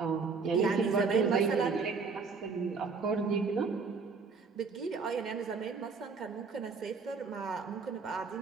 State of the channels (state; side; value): quieter; left; 4.9 dB